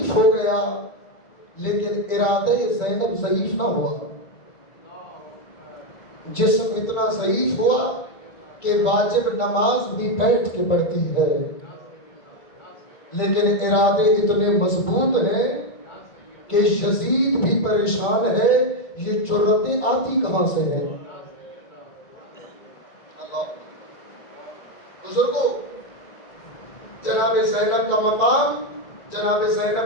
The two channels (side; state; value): right; late; 2.3 ms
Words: ہو گیا لیکن ارادہ زینب ضعیف نہ ہوا. جسم اتنا ضعیف ہوا کہ واجب نماز بھی بیٹھ کے پڑھتی ہے، لیکن ارادے اتنے مضبوط ہیں کہ یزید بھی پریشان ہے، یہ جرأتیں آتی کہاں سے ہے. بزرگوں، جناب زینب کا مقام، جناب